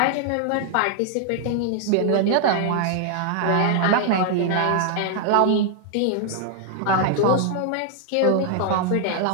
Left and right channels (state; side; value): different; both; correlation 0.00